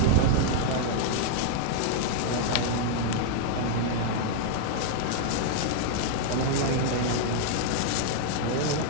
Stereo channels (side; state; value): both; different; correlation -0.01